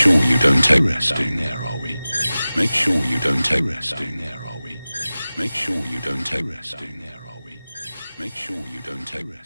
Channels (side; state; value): both; inverted; correlation -0.97